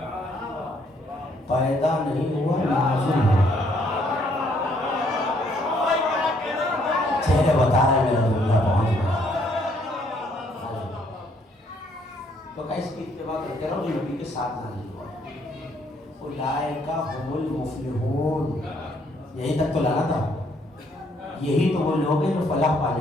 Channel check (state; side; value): normal; both; correlation 0.68